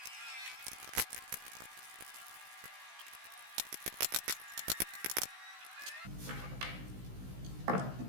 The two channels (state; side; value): late; left; 16 ms